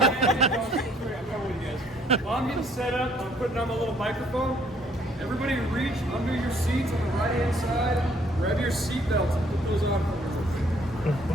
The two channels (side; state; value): both; normal; correlation 0.63